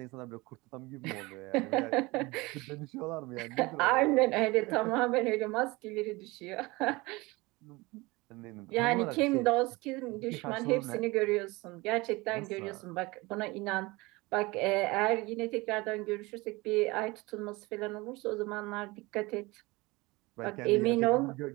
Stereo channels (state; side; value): quieter; left; 22.9 dB